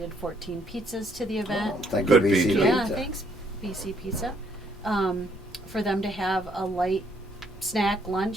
14 pizzas to the event. Oh, thank Good you, BC pizza. Yeah, Pizza. thanks, BC Pizza. For them to have a light snack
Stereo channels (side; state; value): both; normal; correlation 0.69